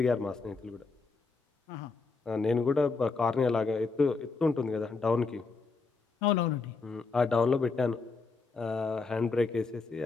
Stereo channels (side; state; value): right; quieter; 4.3 dB